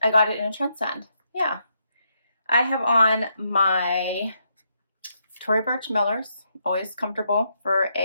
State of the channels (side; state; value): both; inverted; correlation -0.78